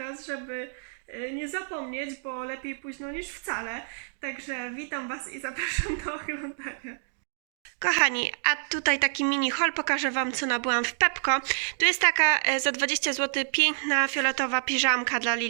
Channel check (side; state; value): left; silent; digital silence